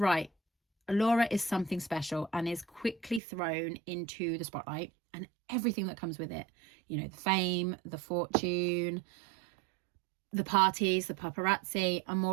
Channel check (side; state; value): left; drops out; at 3.2 s